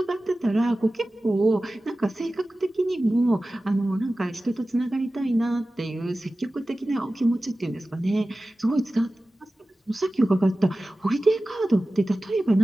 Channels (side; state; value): both; normal; correlation 0.95